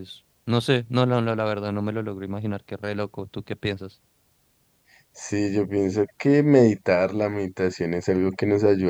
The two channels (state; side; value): identical; both; correlation 1.00